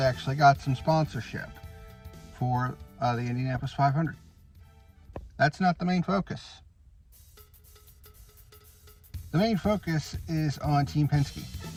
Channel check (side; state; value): both; identical; correlation 1.00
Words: actually got some sponsorship for the Indianapolis 500. That's not the main focus. The main focus is on Team Penske